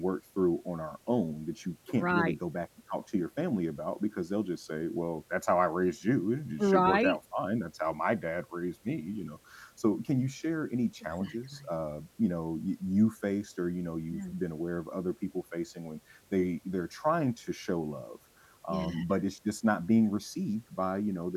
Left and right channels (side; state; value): both; identical; correlation 1.00